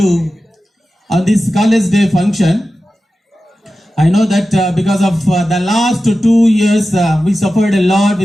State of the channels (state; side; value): normal; both; correlation 0.94